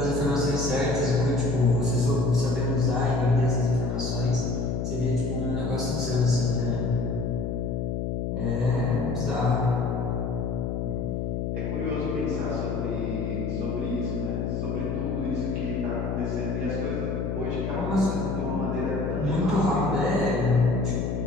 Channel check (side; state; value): left; noise; hum, 1 dB below the sound